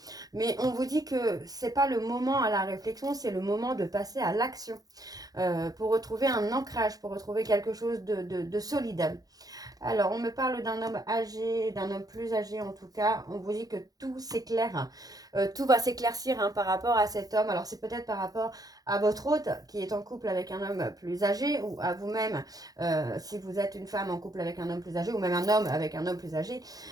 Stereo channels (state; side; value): late; left; 0.18 ms